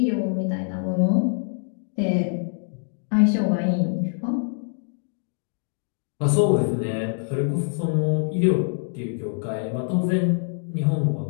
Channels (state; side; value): silent; right; digital silence